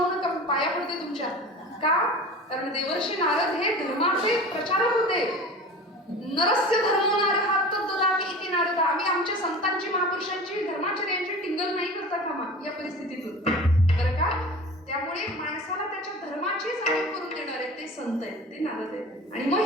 नका, पाया पडते तुमच्या. का? कारण देवर्षी नारद हे धर्माचे प्रचारक होते. नरस्य धर्मो नारः तद्ददाति इति नारद. आम्ही आमच्या संतांची, महापुरुषांची, धर्माचर्यांची टिंगल नाही करता कामा या परिस्थितीतून, बरं का? त्यामुळे माणसाला त्याच्या धर्माची जाणीव करून देणारे ते संत आहेत, ते नारद आहेत. आणि मग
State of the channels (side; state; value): both; normal; correlation 0.36